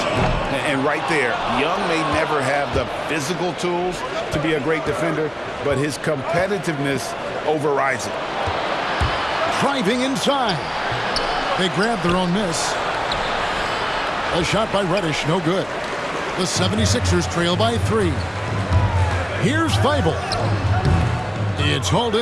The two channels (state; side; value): identical; both; correlation 1.00